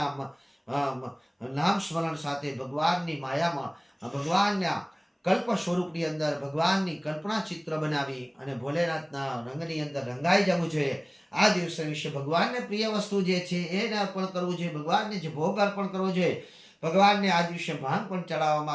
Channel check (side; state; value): both; identical; correlation 1.00